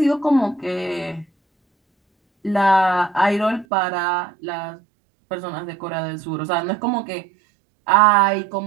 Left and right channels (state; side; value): drops out; left; at 3.7 s